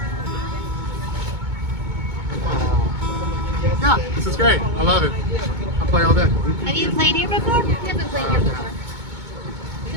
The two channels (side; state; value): left; late; 2.2 ms